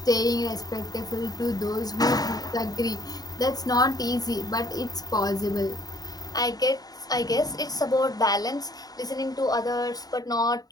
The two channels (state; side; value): late; right; 0.18 ms